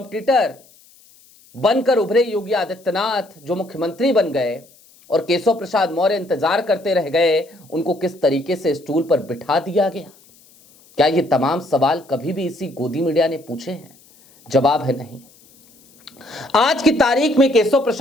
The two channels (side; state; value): left; noise; hiss, 28 dB below the sound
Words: बनकर उभरे योगी आदित्यनाथ जो मुख्यमंत्री बन गए और केशव प्रसाद मौर्य इंतजार करते रह गए, उनको किस तरीके से स्टूल पर बिठा दिया गया? क्या ये तमाम सवाल कभी भी इसी गोदी मीडिया ने पूछे हैं? जवाब है नहीं। आज की तारीख में केशव